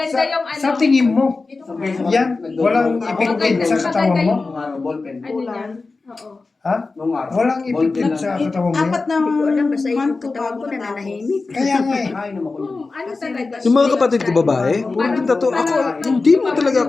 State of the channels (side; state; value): right; quieter; 3.8 dB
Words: yung ano. Sa tingin mo, Sabay sa yan, walang ipigpit sa katawan mo? Nung araw, ballpen. Ano yan? Oo. Ha? Nung araw. Walang ballpen ipigpit sa katawan mo? Apat na Hindi ko alam, basta yung month to katawan bago ko natapos. nananahimik. Kaya nga eh. Ay, naman ko yun. Ano talaga? Yung mga kapatid ko babae, puro din tato. Ako, hindi mo talaga